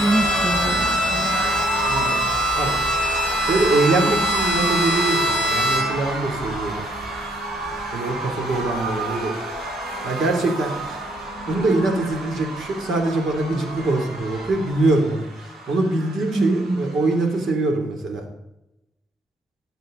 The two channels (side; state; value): both; normal; correlation 0.68